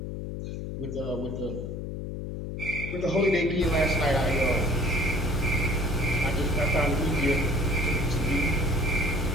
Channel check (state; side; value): noise; left; hum, 6 dB below the sound